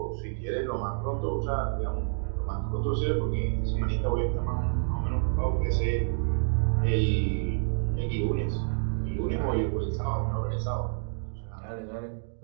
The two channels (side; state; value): left; silent; digital silence